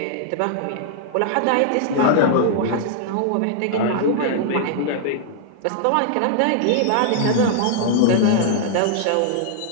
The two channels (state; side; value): different; both; correlation -0.01